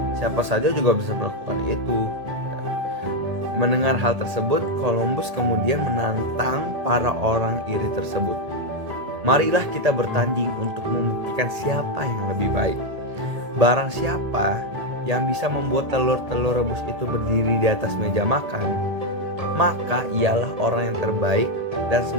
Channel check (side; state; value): left; late; 1.7 ms